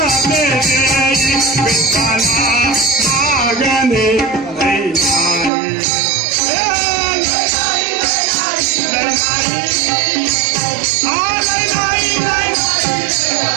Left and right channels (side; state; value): left; drops out; at 5.5 s